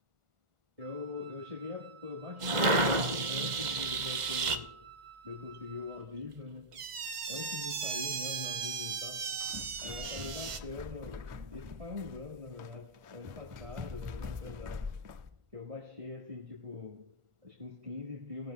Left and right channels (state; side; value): late; left; 1.4 ms